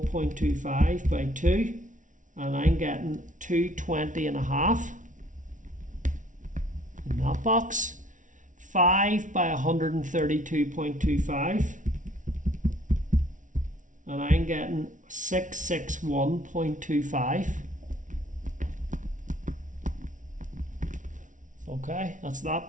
by 2, and I'm getting 220.5 in that box. 5 by 132.25, and I'm getting 661.25. Okay, that's that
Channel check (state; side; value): late; left; 0.37 ms